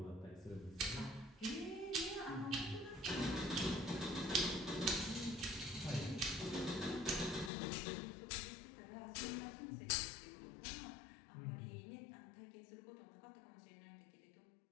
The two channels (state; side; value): drops out; right; at 7.5 s